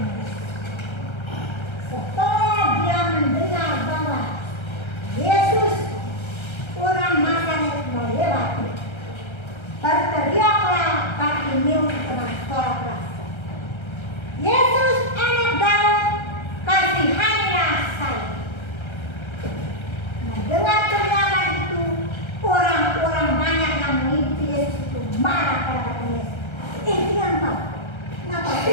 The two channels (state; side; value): late; right; 1.3 ms